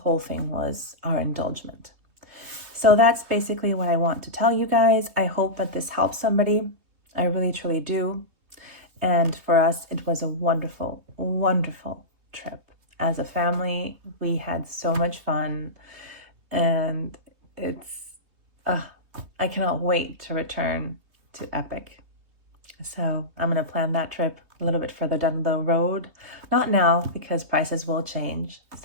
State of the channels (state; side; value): late; left; 3.2 ms